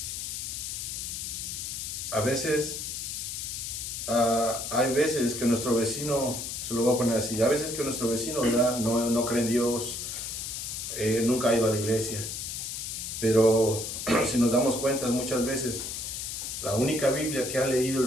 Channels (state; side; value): noise; left; hiss, 5 dB below the sound